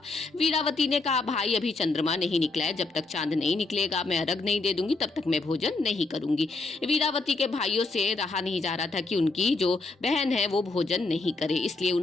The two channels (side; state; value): right; quieter; 3.5 dB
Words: वीरावती ने कहा, भाई अभी चंद्रमा नहीं निकला है, जब तक चांद नहीं निकलेगा मैं अर्घ नहीं दे दूंगी, तब तक मैं भोजन नहीं करूंगी। वीरावती के भाइयों से रहा नहीं जा रहा था कि उनकी जो बहन है वो भोजन नहीं करे, इसलिए